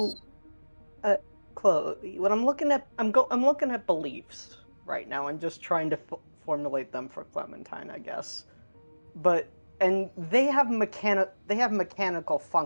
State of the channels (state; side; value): inverted; both; correlation -1.00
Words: Chloe, when I'm looking at, I'm looking at beliefs right now and just trying to formulate them for Clementine, I guess. But and they have mechanical